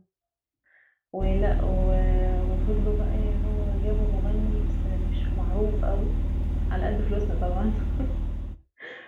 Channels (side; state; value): both; identical; correlation 1.00